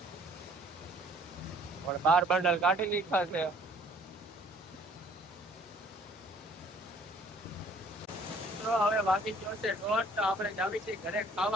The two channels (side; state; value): both; normal; correlation 0.57